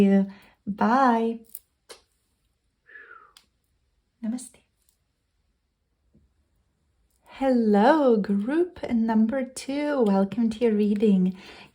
Bye. Namaste. Hello, group number 2. Welcome to your reading.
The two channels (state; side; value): identical; both; correlation 1.00